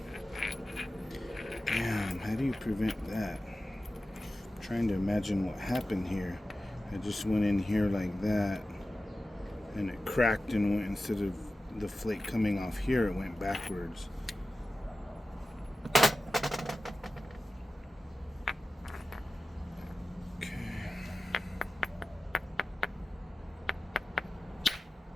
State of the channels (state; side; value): normal; both; correlation 0.95